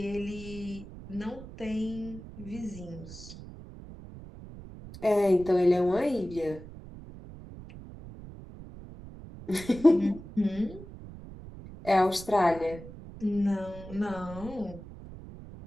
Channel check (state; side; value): noise; right; rumble, 15 dB below the sound